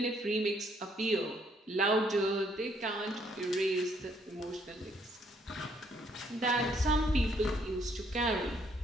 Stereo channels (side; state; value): both; normal; correlation 0.68